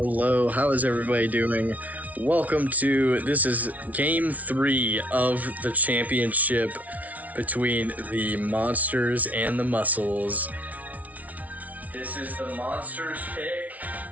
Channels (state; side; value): late; left; 0.071 ms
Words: How is everybody doing? Welcome to this is game 3 of the championship between the Monsters and the Muscles. This is the Monsters pick.